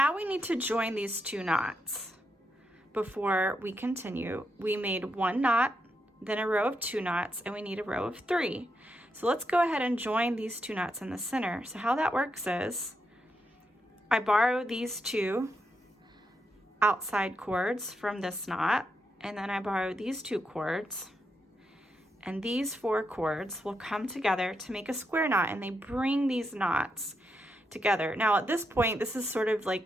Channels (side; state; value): both; normal; correlation 0.82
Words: we need to join these 2 knots before we continue. We made 1 knot, then a row of 2 knots, and we need a row of 3. So let's go ahead and join these 2 knots in the center. So how that works is, I borrow these 2 outside cords from this knot, and then I borrow these 2 cords, and these 4 cords will come together to make a square knot, and they bring these knots together. Now at this point, this is sort of